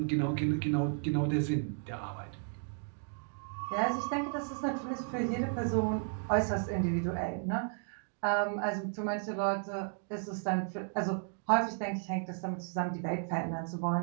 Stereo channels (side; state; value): left; silent; 55 dB below the other